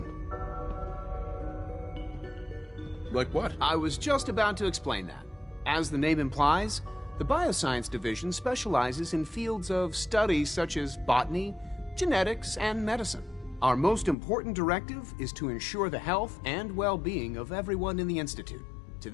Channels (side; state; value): right; drops out; at 14.2 s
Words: Like what? I was just about to explain that. As the name implies, the Bioscience Division specializes in fields of study such as botany, genetics, and medicine. Our most important directive is to ensure the health and well-being of everyone in the Institute. To